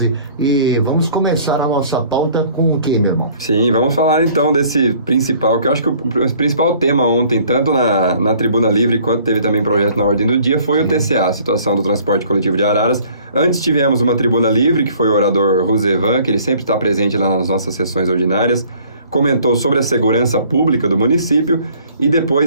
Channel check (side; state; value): both; inverted; correlation -0.56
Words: E vamos começar a nossa pauta com o quê, meu irmão? Sim, vamos falar então desse principal, que eu acho que o principal tema ontem, tanto na Tribuna Livre quanto teve também projeto na ordem do dia, foi o TCA, a situação do transporte coletivo de Araras. Antes tivemos uma Tribuna Livre, que foi o orador Rosevan, que ele sempre está presente lá nas nossas sessões ordinárias, comentou sobre a segurança pública do município, e